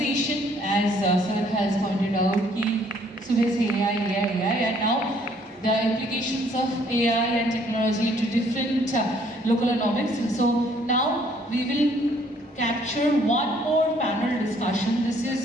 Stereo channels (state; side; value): normal; both; correlation 0.63